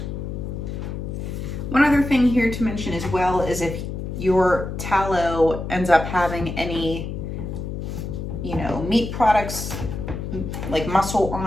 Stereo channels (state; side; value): noise; left; hum, 6 dB below the sound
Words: One other thing here to mention as well is if your tallow ends up having any, meat products like muscle